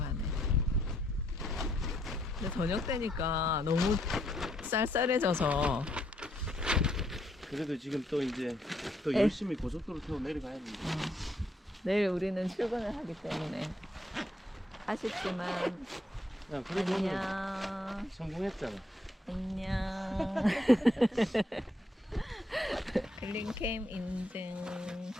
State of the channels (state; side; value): normal; both; correlation 0.73